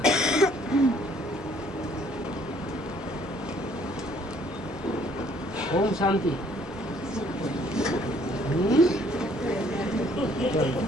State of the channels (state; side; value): normal; both; correlation 0.62